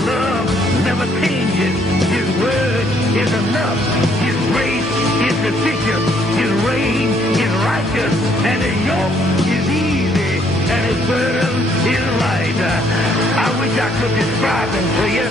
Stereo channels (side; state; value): both; normal; correlation 0.67